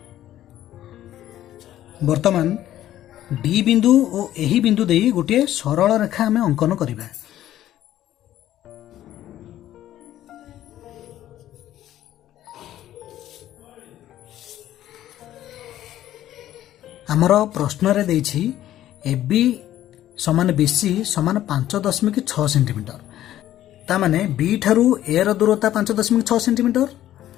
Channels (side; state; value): right; quieter; 12.9 dB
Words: वर्तमान डी बिंदु और एही बिंदु देई गोटे सरल रेखा आमे अंकन करिबा। आमर प्रश्न रे देछि एबी समान बीसी समान 5.6 सेंटीमीटर ता माने बी ठारू ए रो दूरता 5.6 सेंटीमीटर